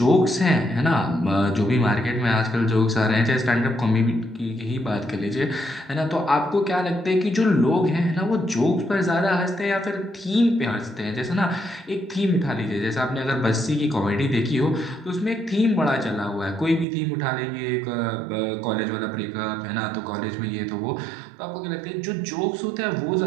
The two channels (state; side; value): drops out; left; at 16.9 s